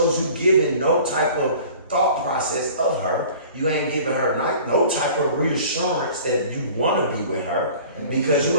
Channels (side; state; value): both; inverted; correlation -0.46